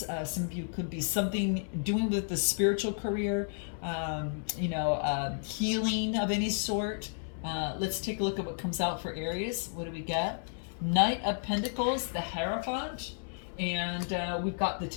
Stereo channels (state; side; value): silent; right; 56 dB below the other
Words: Some of you could be something doing with the spiritual career, healing of any sort. Let's take a look at what comes out for Aries. What do we get? Knight of Pentacles, the Hierophant, and we've got the